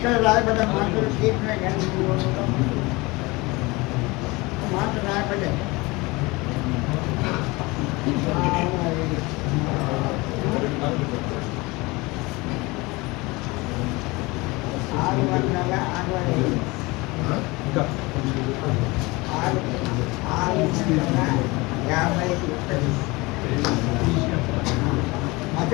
రాయబడ్డ మాటలు తీర్చిన కానీ మాట రాయబడ్డాయి.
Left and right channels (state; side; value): quieter; right; 23.6 dB